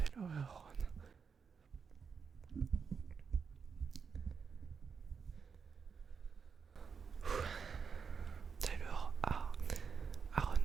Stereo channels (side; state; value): left; quieter; 6.0 dB